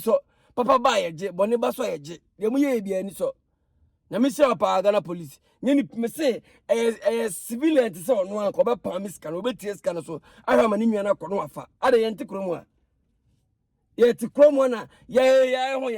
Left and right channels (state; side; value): identical; both; correlation 1.00